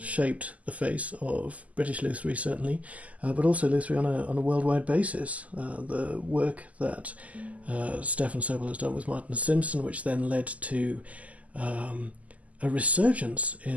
shaped the face of British luthiery, certainly, but also luthiery on a worldwide basis. The work that Stefan Sobell has done with Martin Simpson, which then led to a resurgence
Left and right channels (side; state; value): left; late; 0.072 ms